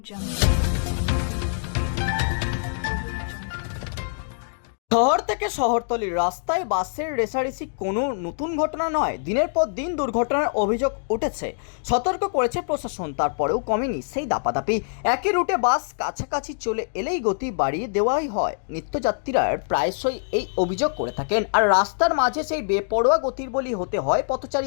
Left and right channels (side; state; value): right; silent; digital silence